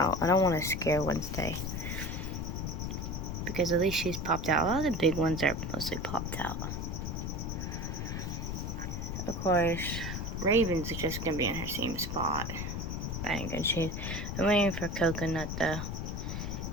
I don't want to scare Wednesday. Because at least she's popped out. A lot of the big ones are mostly popped out. Of course, Raven's just going to be in her same spot. I ain't gonna choose. I'm waiting for Coconut to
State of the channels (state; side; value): noise; left; rumble, 3 dB below the sound